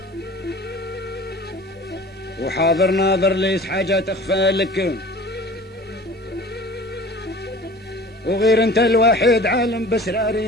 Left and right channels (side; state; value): both; normal; correlation 0.42